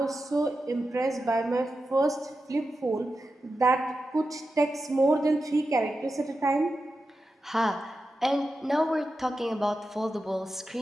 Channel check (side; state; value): both; normal; correlation 0.91